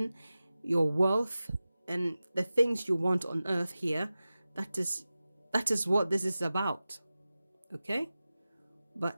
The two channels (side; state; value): both; inverted; correlation -0.95